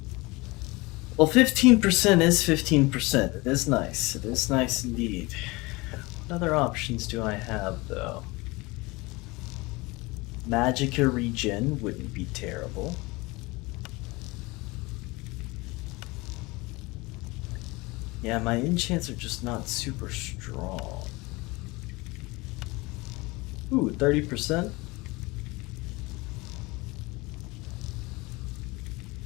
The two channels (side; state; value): right; quieter; 23.6 dB